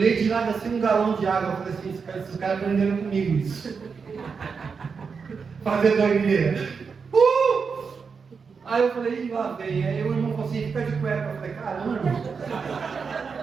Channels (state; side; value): quieter; left; 5.5 dB